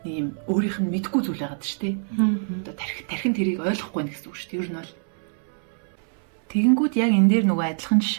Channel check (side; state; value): left; silent; 62 dB below the other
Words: нэг юм өөрийнх нь мэдгүй зүйл байгаад шүү дээ. Одоо тархин тэрийг ойлгохгүй байх гэсэн үг шүү дээ. Ер нь бол тэгэнгүүт яг энэ дээр нөгөө адилхан